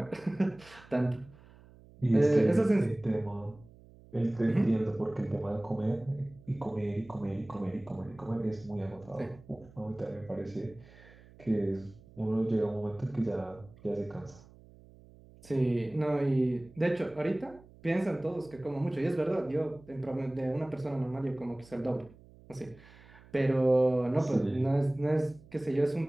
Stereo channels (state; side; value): noise; right; hum, 23 dB below the sound